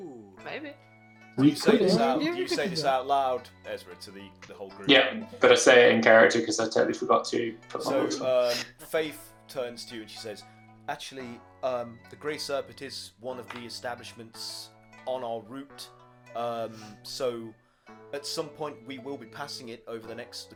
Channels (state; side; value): identical; both; correlation 1.00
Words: Maybe. Do you say this out loud, Ezra, to the whole group? Yeah, but I say it in character because I totally forgot to put my voice on. Faith turns to you and she says, actually, the Grey Serpent is one of the establishments on our route. So at some point we will be passing it over the